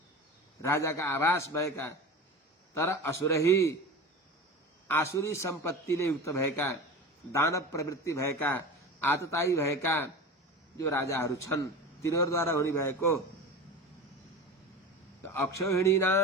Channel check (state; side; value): normal; both; correlation 0.31